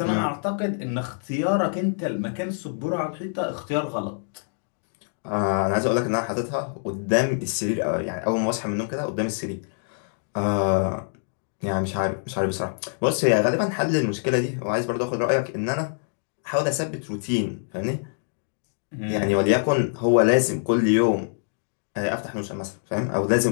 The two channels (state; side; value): silent; right; digital silence